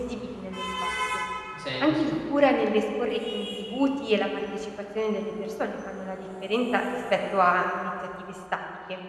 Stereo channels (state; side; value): identical; both; correlation 1.00